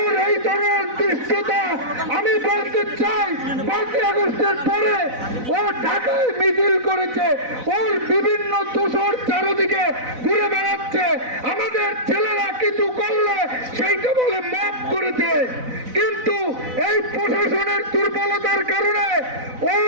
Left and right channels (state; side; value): late; left; 4.0 ms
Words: এই ধরনের দৃশ্যতা আমি বলতে চাই, 5ই আগস্টের পরে ও ঢাকায় মিছিল করেছে, ওর বিভিন্ন দোষর চারদিকে ঘুরে বেড়াচ্ছে। আমাদের ছেলেরা কিছু করলে সেইটা বলে মাফ করেছে, কিন্তু এই প্রশাসনের দুর্বলতার কারণে ও